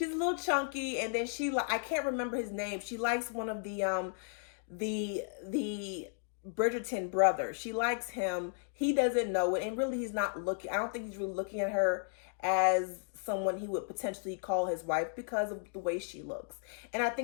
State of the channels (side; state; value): right; silent; 55 dB below the other